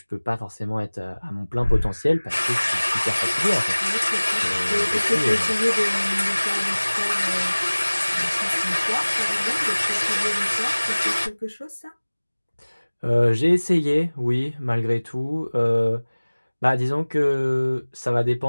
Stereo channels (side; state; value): both; inverted; correlation -1.00